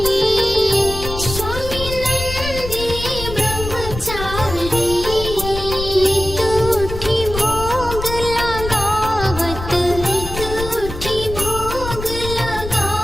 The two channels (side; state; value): left; noise; rumble, 8 dB below the sound